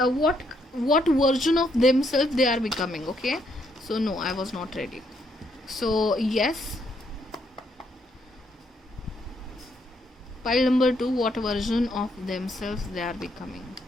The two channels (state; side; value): normal; both; correlation 0.74